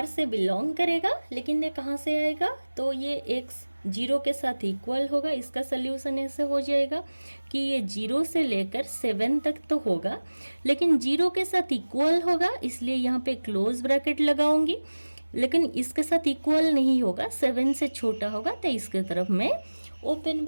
से बिलोंग करेगा, लेकिन ये कहाँ से आएगा, तो ये x 0 के साथ इक्वल होगा। इसका सोल्यूशन ऐसे हो जाएगा कि ये 0 से लेकर 7 तक तो होगा, लेकिन 0 के साथ इक्वल होगा, इसलिए यहाँ पे क्लोज ब्रैकेट लगाऊंगी। लेकिन इसके साथ इक्वल नहीं होगा, 7 से छोटा होगा, तो इसके तरफ मैं ओपन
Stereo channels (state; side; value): inverted; both; correlation -1.00